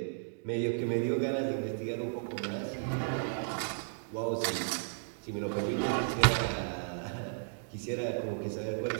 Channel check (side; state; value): left; silent; digital silence